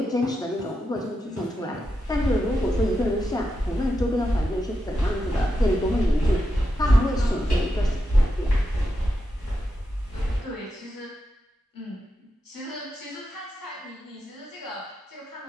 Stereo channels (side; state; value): both; normal; correlation 0.87